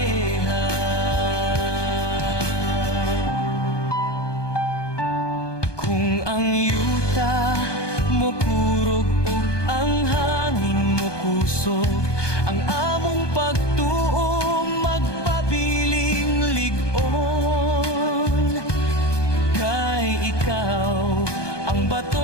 Kung ang yuta mo kurog ug ang hangin mo kusog, ang among pagtuo magpabiling lig-on. Kay ikaw ang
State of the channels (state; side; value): late; right; 1.2 ms